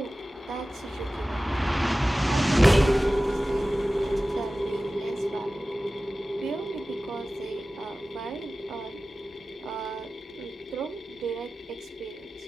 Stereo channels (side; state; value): both; normal; correlation 0.96